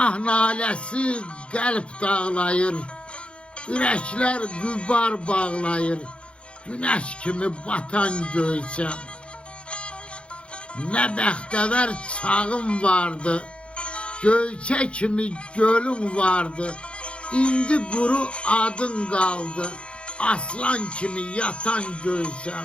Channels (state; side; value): late; right; 0.058 ms